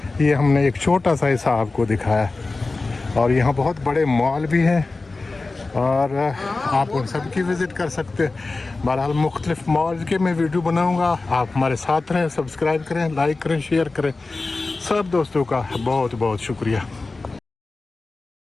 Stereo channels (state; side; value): quieter; right; 3.5 dB